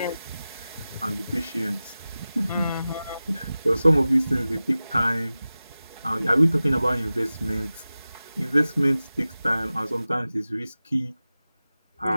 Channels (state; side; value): inverted; both; correlation -0.96